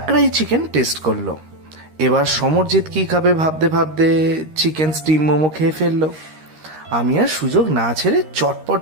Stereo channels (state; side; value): late; left; 13 ms